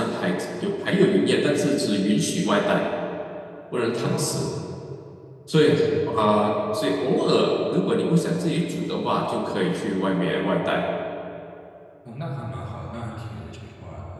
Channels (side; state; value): both; identical; correlation 1.00